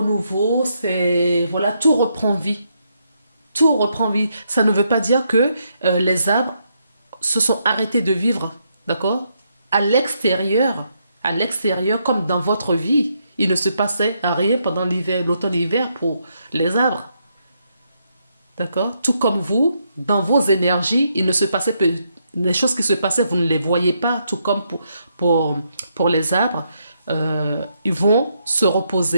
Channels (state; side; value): inverted; both; correlation -0.77